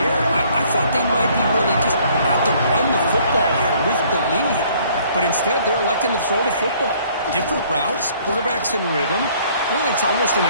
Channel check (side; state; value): both; inverted; correlation -0.60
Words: air. I thought they might be really just out to run the football here with the lead. But instead, they're electing to throw the football. Different routes, quarterbacks in rhythm. Really, it's almost an